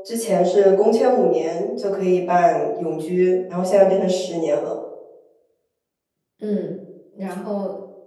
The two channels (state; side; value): identical; both; correlation 1.00